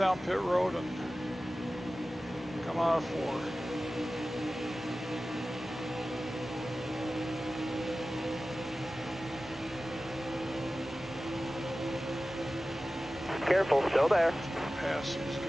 pit road and come out of 4. Careful, still there. Pass these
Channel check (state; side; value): normal; both; correlation 0.96